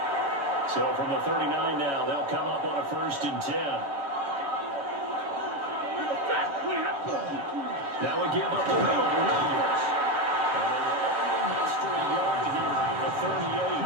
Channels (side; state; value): left; late; 7.2 ms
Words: So from the 39 now, they'll come up on a 1st and 10. Now we give up the middle to Williams. And only missed a yard here at the